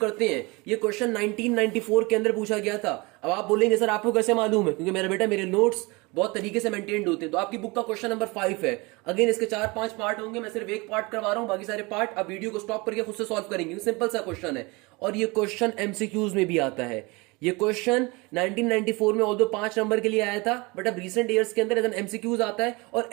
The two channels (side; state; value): left; quieter; 25.7 dB